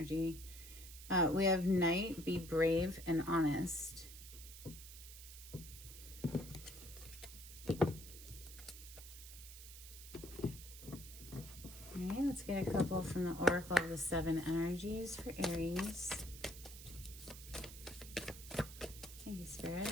We have Knight, be brave and honest. All right, let's get a couple from the Oracle of the Seven Energies for Aries. Thank you,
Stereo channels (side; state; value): right; noise; hiss, 14 dB below the sound